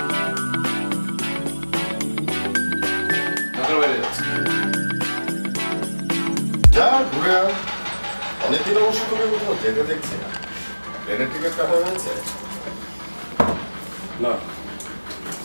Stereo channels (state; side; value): inverted; both; correlation -1.00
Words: যা ঘুরে আয়, অনেকদিন অবশ্য তোকে কোথাও যেতে দেখছি না। প্লেনের টিকিট কাটা হয়েছে? না,